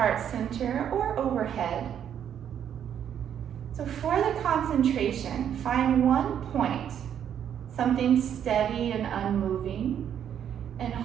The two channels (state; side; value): quieter; left; 9.2 dB